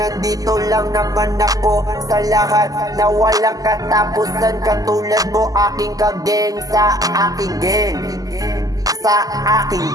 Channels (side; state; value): left; late; 0.17 ms